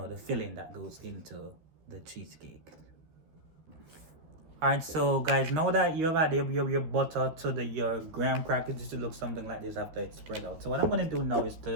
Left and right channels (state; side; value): late; left; 13 ms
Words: filling that goes into the cheesecake. All right, so guys, now that you've added your butter to your graham crackers, it should look something like this after it's spread out. So what I'm going to do now is